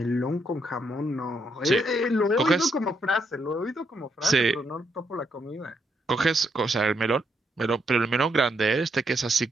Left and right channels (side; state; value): both; normal; correlation 0.77